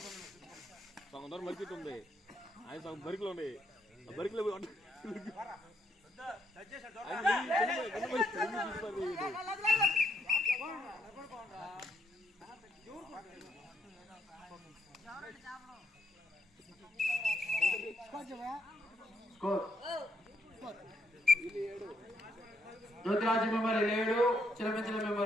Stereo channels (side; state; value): both; normal; correlation 0.75